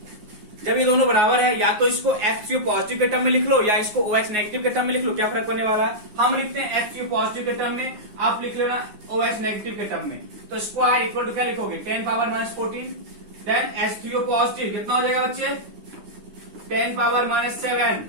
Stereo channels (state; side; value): late; left; 9.5 ms